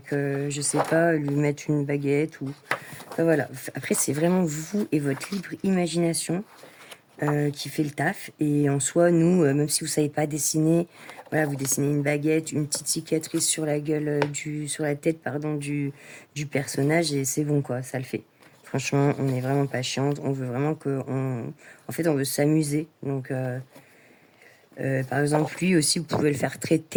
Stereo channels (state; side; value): identical; both; correlation 1.00